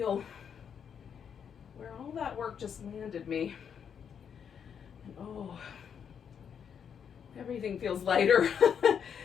where all that work just landed me. And oh, everything feels lighter.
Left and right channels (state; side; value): quieter; right; 7.6 dB